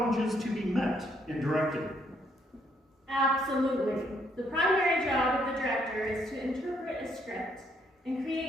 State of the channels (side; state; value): both; normal; correlation 0.70